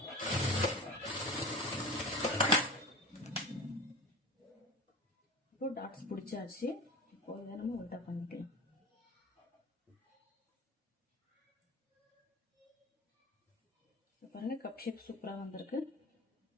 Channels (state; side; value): normal; both; correlation 0.32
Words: இப்போ டாட்ஸ் பிடிச்சாச்சு. இப்போ இதை நம்ம உல்டா பண்ணிக்கலாம். பாருங்க, கப் ஷேப் சூப்பராக வந்திருக்கு.